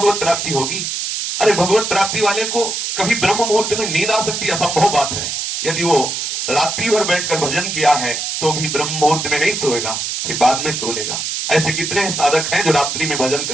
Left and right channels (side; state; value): right; noise; hiss, 3 dB below the sound